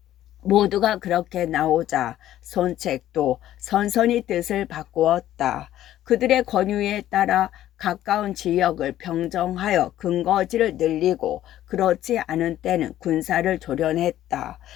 모두가 그렇게 나오자 손책도 선선히 뜻을 바꾸었다. 그들의 권유에 따라 가까운 지역을 평정하여 근거지를 늘리고 그렇지 않은 때는 군사를 조련했다.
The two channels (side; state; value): right; quieter; 12.9 dB